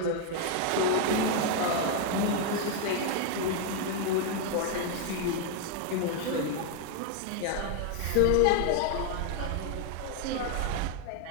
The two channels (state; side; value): different; both; correlation 0.00